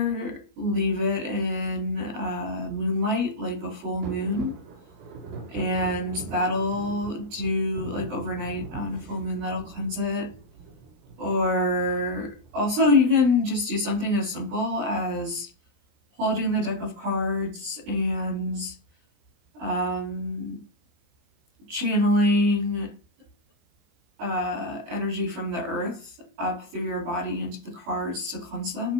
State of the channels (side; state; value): left; late; 24 ms